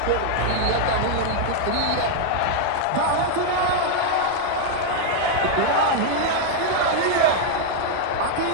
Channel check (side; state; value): both; different; correlation 0.00